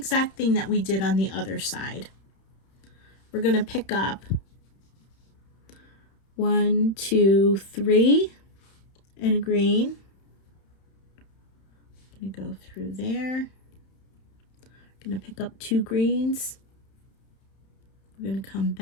thing that we did on the other side. We're going to pick up 1, 2, 3 in a green. I'm going to go through there. I'm going to pick up 2 greens. We're going to come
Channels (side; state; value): right; late; 31 ms